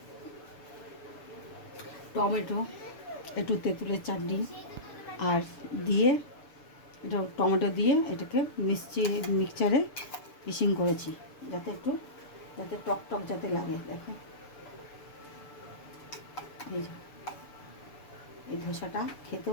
টমেটো, একটু তেঁতুলের চাটনি আর দিয়ে, এটা টমেটো দিয়ে এটাকে মিক্সচারে মিক্সিং করেছি, যাতে টক টক যাতে লাগে। দেখো এই যে এই ধোসাটা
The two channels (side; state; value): right; late; 6.9 ms